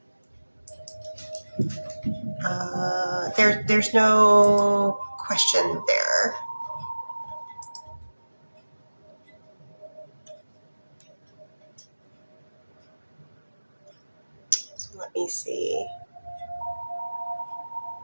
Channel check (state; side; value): inverted; both; correlation -1.00